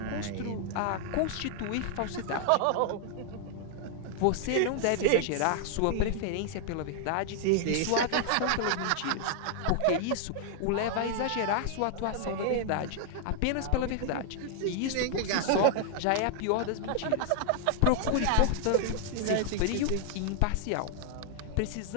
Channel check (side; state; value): both; different; correlation 0.00